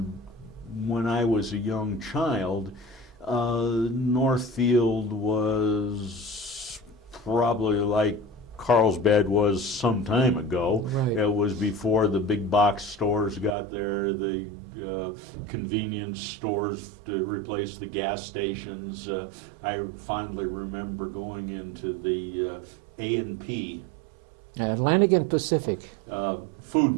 when I was a young child, Northfield was probably like Carlsbad was some time ago. Right. It was before the big box stores got there, the convenience stores to replace the gas stations. I fondly remember going into the A&P Atlantic and Pacific.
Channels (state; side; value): drops out; left; at 13.6 s